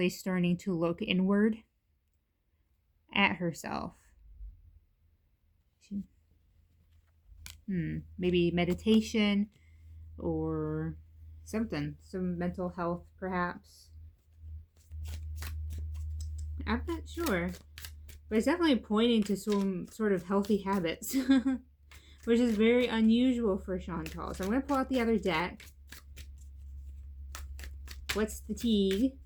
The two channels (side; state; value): both; identical; correlation 1.00